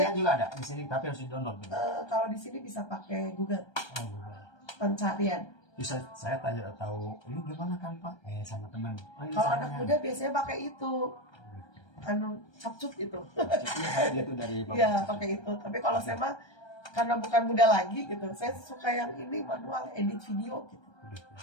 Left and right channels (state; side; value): late; right; 1.3 ms